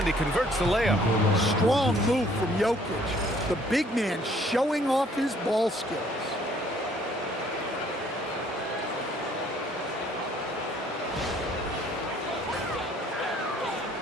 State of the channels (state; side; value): normal; both; correlation 0.60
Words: he converts the layup. Strong move from Jokic. The big man showing off his ball skills.